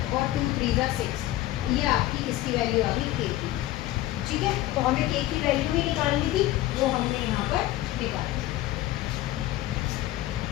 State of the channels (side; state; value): right; quieter; 15.6 dB